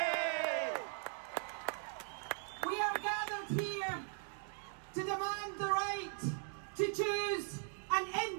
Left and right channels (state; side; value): silent; left; 51 dB below the other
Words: We are gathered here to demand the right to choose an